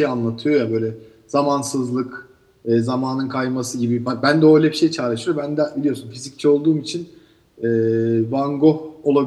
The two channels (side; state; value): both; identical; correlation 1.00